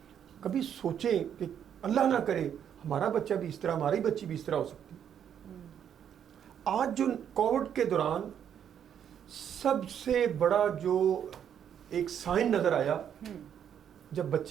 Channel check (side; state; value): left; quieter; 8.9 dB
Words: کبھی سوچیں کہ اللہ نہ کرے ہمارا بچہ بھی اس طرح, ہماری بچی بھی اس طرح ہو سکتی. آج جو کووڈ کے دوران سب سے بڑا جو ایک سائن نظر آیا, جب